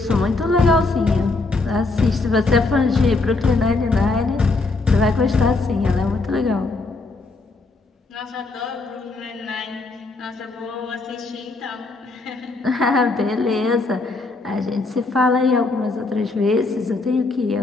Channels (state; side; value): quieter; right; 3.5 dB